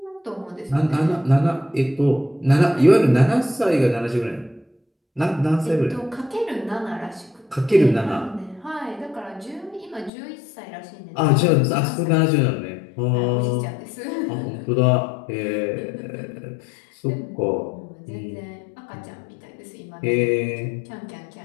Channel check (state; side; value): drops out; right; at 10.1 s